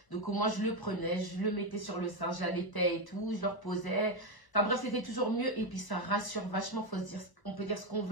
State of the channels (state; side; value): late; right; 1.0 ms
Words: Donc au moins, je le prenais, je le mettais sur le sein, j'allaitais et tout, je le reposais. Enfin bref, c'était toujours mieux. Et puis ça rassure vachement, on peut dire ce qu'on